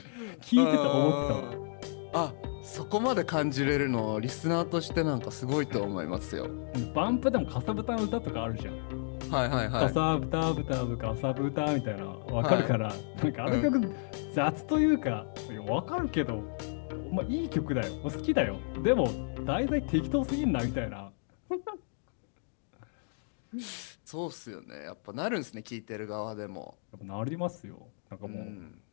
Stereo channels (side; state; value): right; silent; digital silence